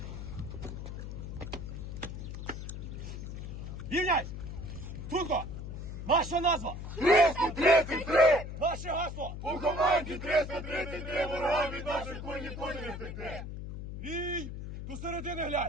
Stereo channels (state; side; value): noise; left; hum, 7 dB below the sound